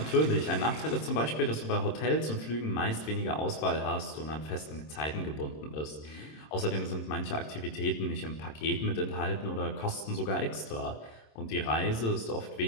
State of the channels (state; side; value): late; right; 26 ms